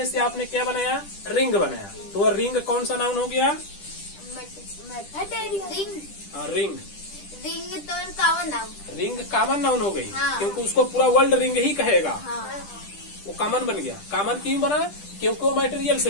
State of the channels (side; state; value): right; late; 10 ms